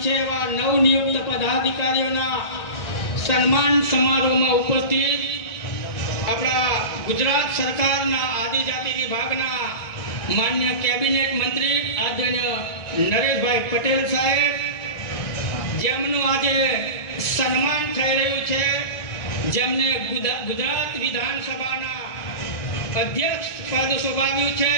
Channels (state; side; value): late; right; 1.5 ms